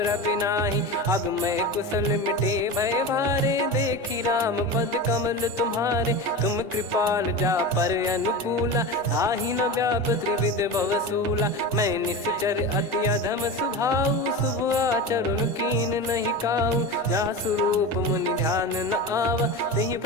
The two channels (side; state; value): both; normal; correlation 0.26